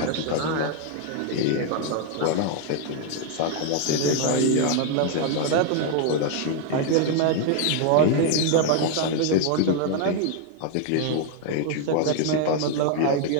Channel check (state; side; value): different; both; correlation 0.00